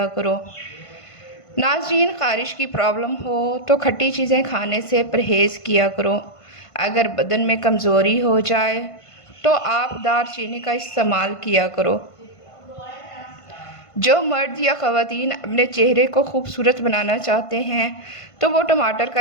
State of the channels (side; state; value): right; late; 1.5 ms